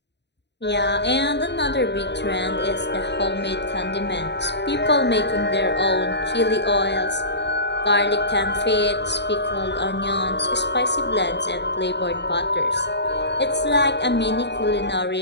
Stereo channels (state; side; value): late; right; 0.50 ms